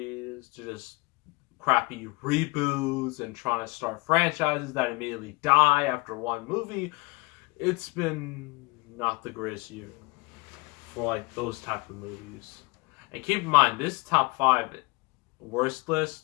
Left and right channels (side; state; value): right; quieter; 25.5 dB